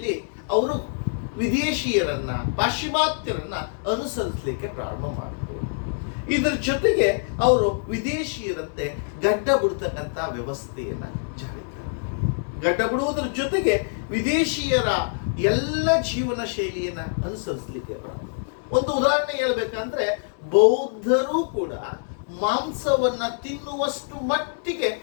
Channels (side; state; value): right; silent; digital silence